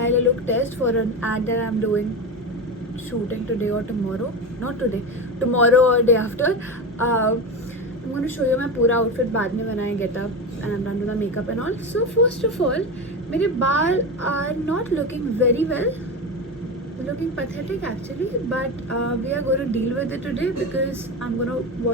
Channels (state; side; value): normal; both; correlation 0.21